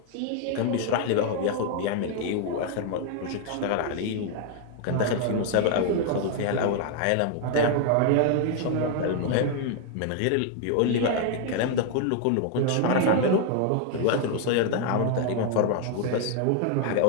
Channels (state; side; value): different; both; correlation 0.00